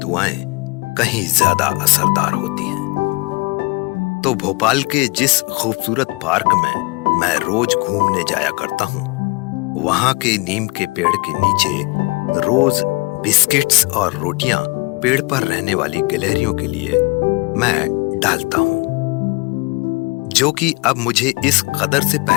कहीं ज्यादा असरदार होती हैं। तो भोपाल के जिस खूबसूरत पार्क में मैं रोज घूमने जाया करता हूँ, वहां के नीम के पेड़ के नीचे रोज बिस्किट्स और रोटियां पेड़ पर रहने वाली गिलहरियों के लिए मैं डालता हूं, जो कि अब मुझे इस कदर से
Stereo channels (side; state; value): right; quieter; 26.3 dB